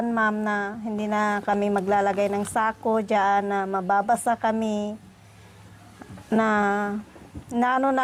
ma'am, na hindi na kami maglalagay ng sako dyan, na mababasa kami, na ano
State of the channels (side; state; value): both; identical; correlation 1.00